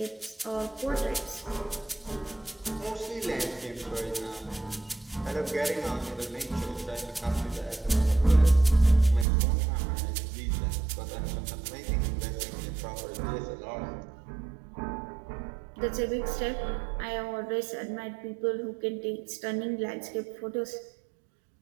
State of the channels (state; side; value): drops out; left; at 9.2 s